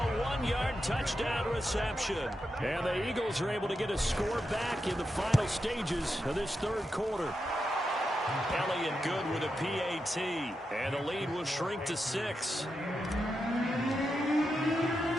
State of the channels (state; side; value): normal; both; correlation 0.87